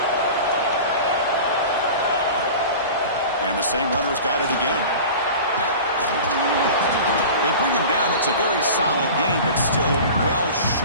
And the same runner's got it again. They bring him down. It's a very solid game, but still well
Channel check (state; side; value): inverted; both; correlation -0.36